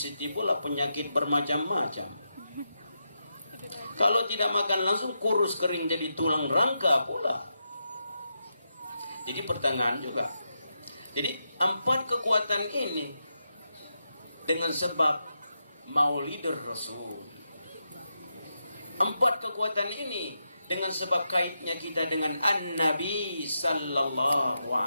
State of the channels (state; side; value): inverted; both; correlation -0.85